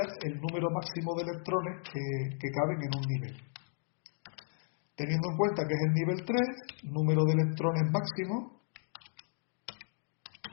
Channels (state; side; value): silent; right; digital silence